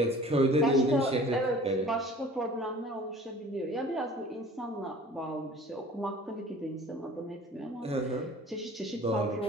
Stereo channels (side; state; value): both; normal; correlation 0.47